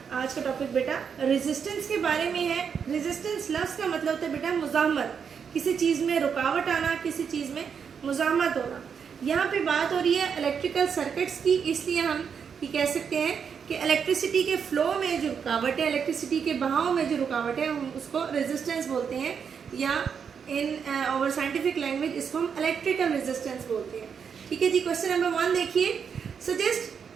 आज का टॉपिक बेटा resistance के बारे में है. Resistance लफ्ज़ का मतलब होता है बेटा मुज़ाहमत, किसी चीज़ में रुकावट आना, किसी चीज़ में मुज़ाहमत होना. यहाँ पे बात हो रही है इलेक्ट्रिकल सर्किट्स की, इसलिए हम ये कह सकते हैं कि इलेक्ट्रिसिटी के फ्लो में जो रुकावट है, इलेक्ट्रिसिटी के बहाव में जो रुकावट है, हम उसको रेजिस्टेंस बोलते हैं, या इन आवर साइंटिफिक लैंग्वेज इसको हम इलेक्ट्रिकल रेजिस्टेंस बोलते हैं. ठीक है जी. क्वेश्चन नंबर 1 देखिए.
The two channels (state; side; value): quieter; left; 6.8 dB